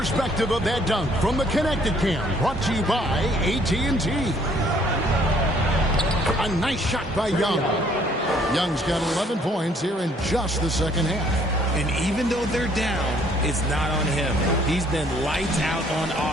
of that dunk from the Connected Cam, brought to you by AT&T. A nice shot by Young. Young's got 11 points here in just the second half. And even though they're down, it's not on him. He's been lights out on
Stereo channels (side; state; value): both; normal; correlation 0.62